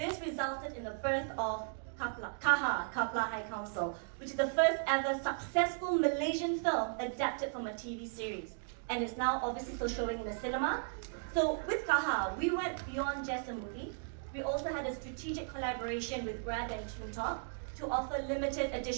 resulted in the birth of Kapla High Council, which is the first ever successful Malaysian film adapted from a TV series. And it's now obviously still showing in the cinema. So with Kaha, we went beyond just a movie. We also had a strategic collaboration with Grab and TuneTalk to offer limited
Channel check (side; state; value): left; silent; digital silence